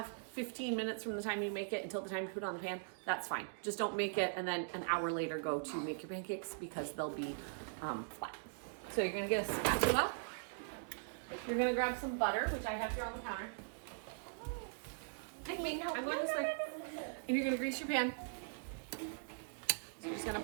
15 minutes from the time you make it until the time you put it on the pan, that's fine. Just don't make it and then an hour later go to make your pancakes because they'll be flat. So you're gonna get a spatula. You're gonna grab some butter, which I have here on the counter. I'm going this way. And you're gonna grease your pan. So you're just gonna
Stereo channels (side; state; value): left; silent; digital silence